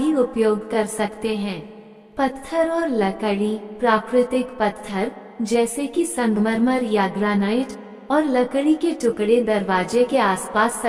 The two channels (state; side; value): identical; both; correlation 1.00